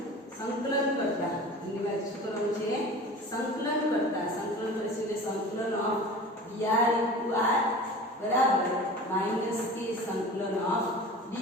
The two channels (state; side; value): normal; both; correlation 0.37